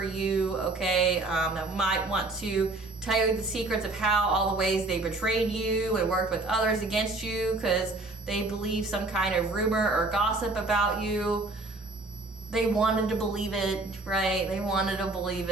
you, okay? That might want to tell you the secrets of how all the ways they betrayed you and worked with others against you because they believe some kind of rumor or gossip about you. They wanted to believe it, right? They wanted to believe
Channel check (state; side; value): quieter; left; 3.1 dB